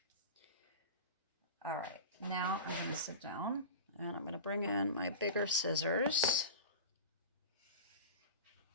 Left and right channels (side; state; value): both; inverted; correlation -0.33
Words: All right, now I'm going to sit down, and I'm going to bring in my bigger scissors.